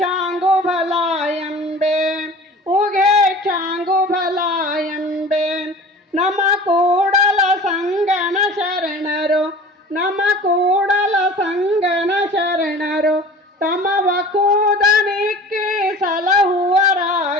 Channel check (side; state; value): both; normal; correlation 0.41